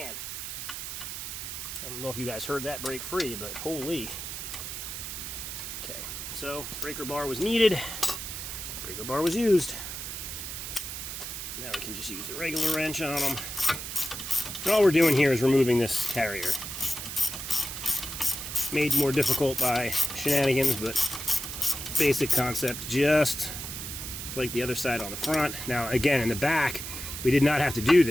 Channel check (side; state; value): right; noise; hiss, 7 dB below the sound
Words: I don't know if you guys heard that break free, but holy. Okay, so breaker bar was needed. Breaker bar was used. Now we can just use the regular wrench on them. And all we're doing here is removing this carrier. Made more difficult by shenanigans, but basic concept, just like the other side on the front. Now again, in the back, we did not have to do